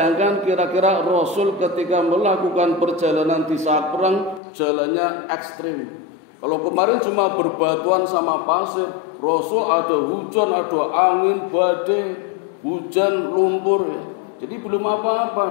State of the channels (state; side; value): drops out; right; at 4.4 s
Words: kira-kira Rasul ketika melakukan perjalanan di saat perang, jalannya ekstrim. Kalau kemarin cuma berbatuan sama pasir, Rasul ada hujan, ada angin, badai, hujan, lumpur ya. Jadi belum